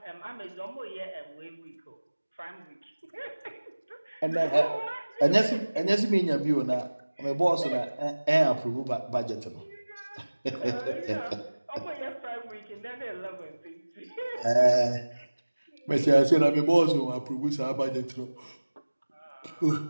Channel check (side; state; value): both; inverted; correlation -1.00